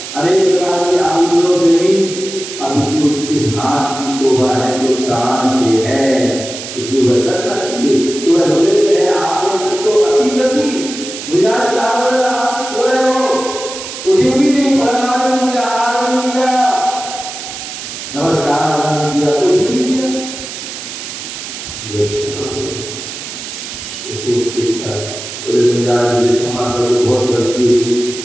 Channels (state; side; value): noise; right; hiss, 9 dB below the sound